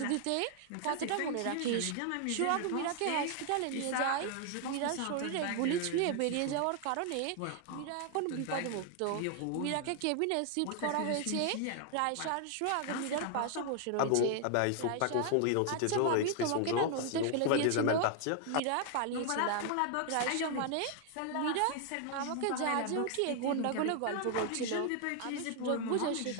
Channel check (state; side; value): different; both; correlation 0.00